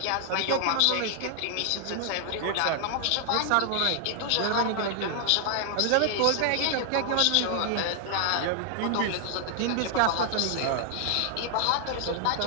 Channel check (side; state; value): both; different; correlation 0.00